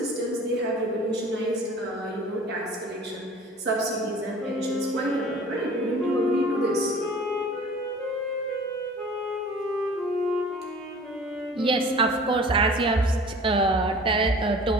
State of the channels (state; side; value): normal; both; correlation 0.45